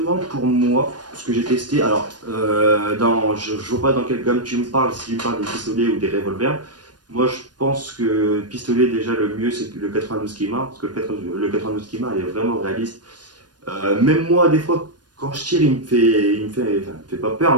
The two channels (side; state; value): left; late; 0.69 ms